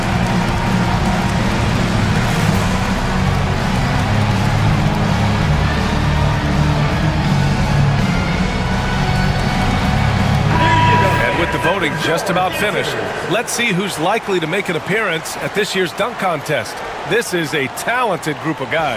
Voting just about finished. Let's see who's likely to make an appearance at this year's dunk contest. This is a talented group of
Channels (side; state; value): both; identical; correlation 1.00